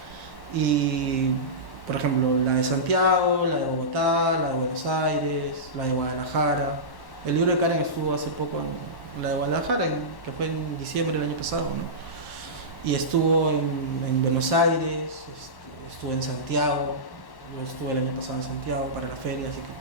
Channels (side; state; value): right; late; 1.1 ms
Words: y por ejemplo la de Santiago, la de Bogotá, la de Buenos Aires, la de Guadalajara. El libro de Karen estuvo hace poco en la de Guadalajara, que fue en diciembre del año pasado, ¿no? Y estuvo en Buenos Aires, estuvo en Santiago, yo estuve el año pasado en Santiago para la feria, así